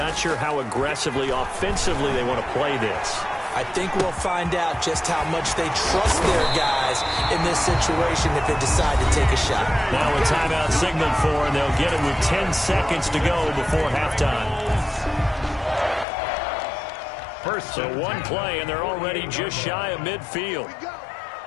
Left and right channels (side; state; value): right; drops out; at 16.1 s